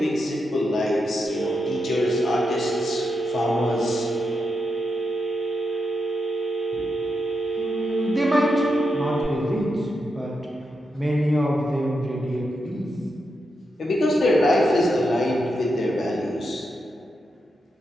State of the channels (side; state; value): both; normal; correlation 0.86